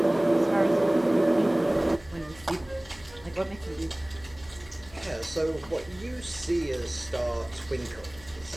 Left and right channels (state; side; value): noise; left; hum, 22 dB below the sound